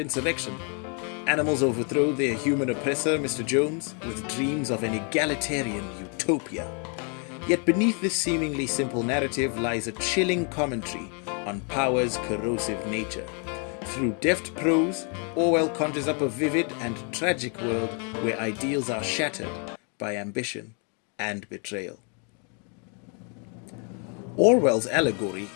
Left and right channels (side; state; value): right; quieter; 38.4 dB